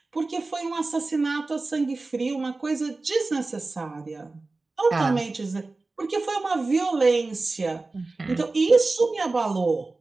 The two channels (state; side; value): quieter; left; 3.4 dB